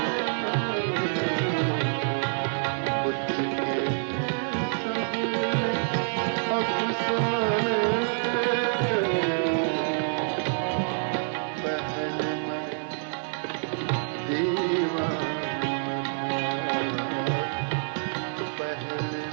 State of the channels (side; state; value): left; silent; digital silence